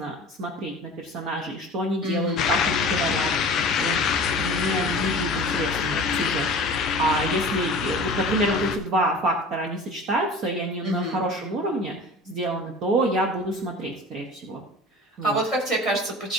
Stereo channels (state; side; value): normal; both; correlation 0.39